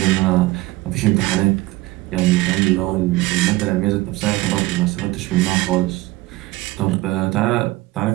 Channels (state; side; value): quieter; left; 19.3 dB